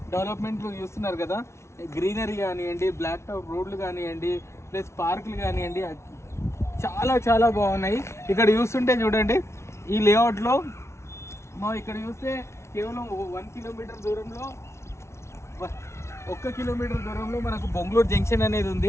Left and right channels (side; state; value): right; late; 0.13 ms